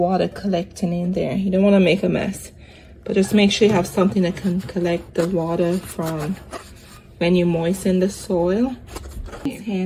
collecting in there. You don't want to make a mess, but just make sure you have something that can collect the water from when you moisten the soil. Here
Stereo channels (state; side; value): identical; both; correlation 1.00